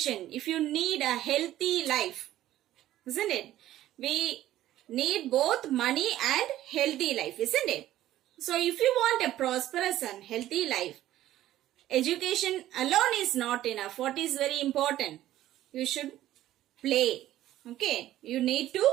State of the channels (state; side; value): quieter; left; 13.8 dB